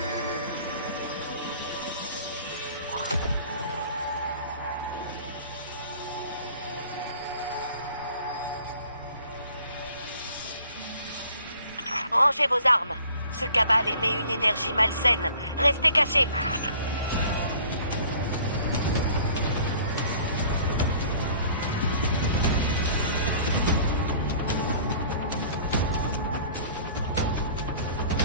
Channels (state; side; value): inverted; both; correlation -0.51